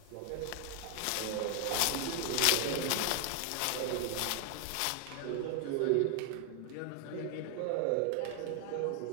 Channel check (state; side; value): different; both; correlation 0.00